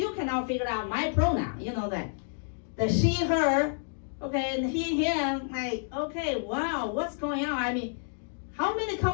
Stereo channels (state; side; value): silent; right; digital silence